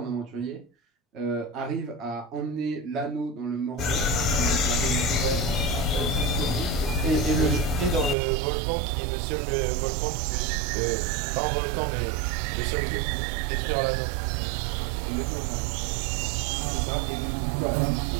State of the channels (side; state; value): left; drops out; at 8.2 s